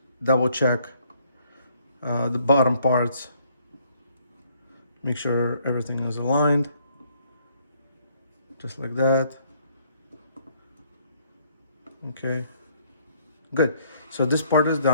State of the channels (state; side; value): inverted; both; correlation -0.66